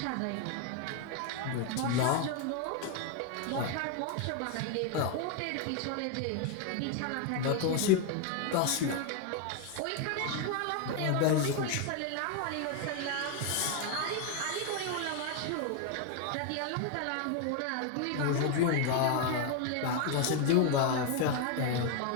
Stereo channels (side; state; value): both; different; correlation 0.01